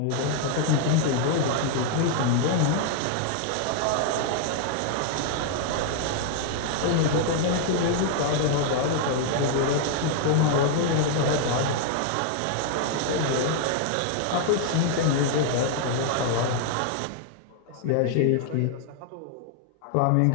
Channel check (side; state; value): both; different; correlation 0.00